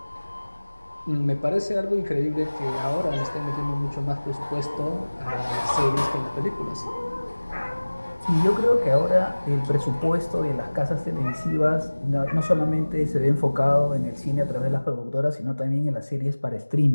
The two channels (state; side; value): inverted; both; correlation -1.00